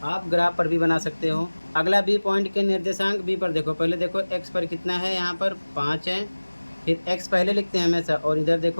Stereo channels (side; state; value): both; inverted; correlation -1.00